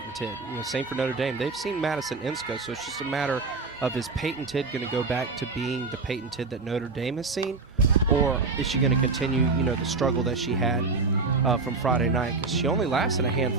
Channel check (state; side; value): quieter; left; 4.1 dB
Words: Tidd. You know, same for Notre Dame. They've seen Madison Insco, so it's just a matter of, is Payton Tidd going to go back to being the Payton Tidd that Notre Dame has seen, or is she going to continue, you know, the struggle that she had from Friday night? Because she only lasted a